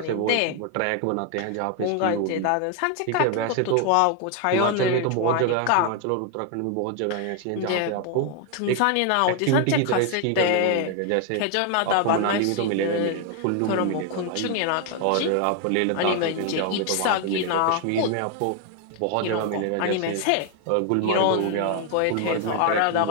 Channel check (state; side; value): different; both; correlation 0.01